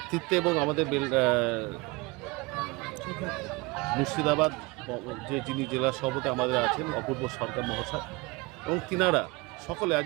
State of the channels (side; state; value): left; quieter; 25.0 dB